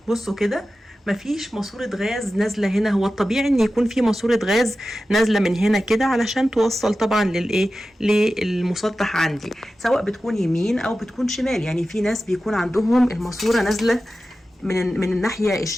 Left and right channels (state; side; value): normal; both; correlation 0.94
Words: بصوا كده مفيش ماسورة غاز نازلة هنا. هو الطبيعي ان يكون في ماسورة غاز نازلة من هنا كده علشان توصل طبعا للمسطح عندي، سواء بتكون يمين او بتكون شمال. يعني في ناس بيكون عندهم الماسورة نازلة من الناحية